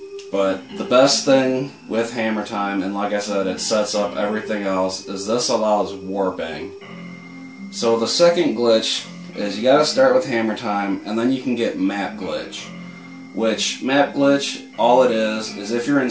But the best thing with Hammertime, and like I said, it sets up everything else, is this allows warping. So the second glitch is you gotta start with Hammertime, and then you can get map glitch. Which, map glitch, all it is if you're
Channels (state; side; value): identical; both; correlation 1.00